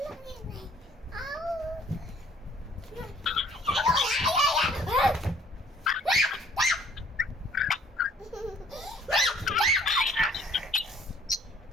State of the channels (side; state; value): both; normal; correlation 0.58